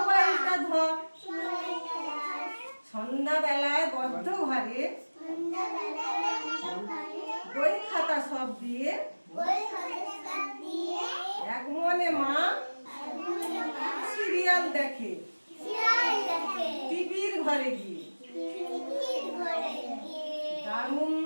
ধর। সন্ধ্যাবেলায় বদ্ধ ঘরে বই খাতা সব দিয়ে এক মনে মা সিরিয়াল দেখে টিভির ঘরে গিয়ে। দারুণ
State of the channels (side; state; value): both; inverted; correlation -1.00